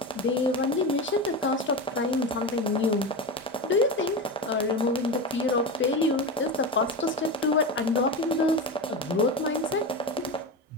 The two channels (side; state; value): both; normal; correlation 0.21